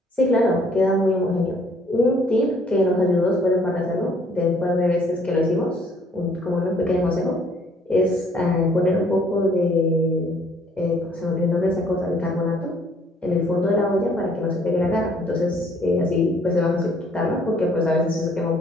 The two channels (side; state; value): both; normal; correlation 0.61